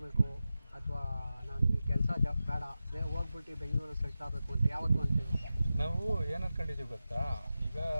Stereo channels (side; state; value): both; inverted; correlation -0.93